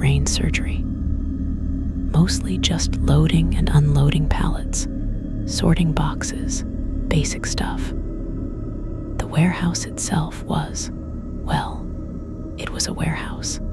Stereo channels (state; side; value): identical; both; correlation 1.00